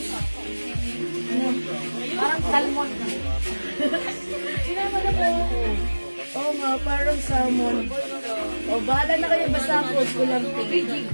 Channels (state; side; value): inverted; both; correlation -1.00